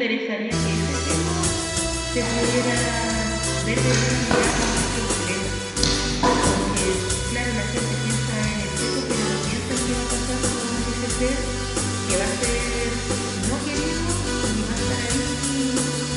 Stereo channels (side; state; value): both; identical; correlation 1.00